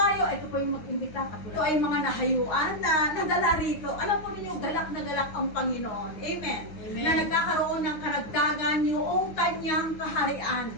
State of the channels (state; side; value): late; right; 9.6 ms